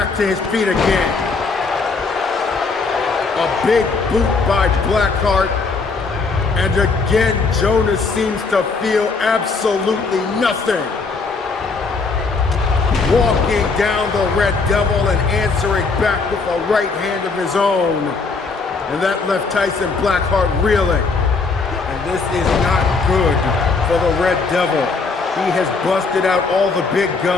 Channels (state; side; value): quieter; right; 4.3 dB